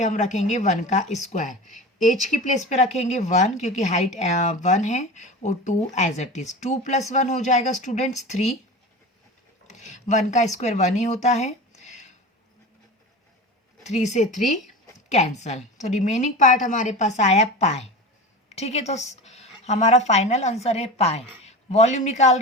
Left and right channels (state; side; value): normal; both; correlation 0.30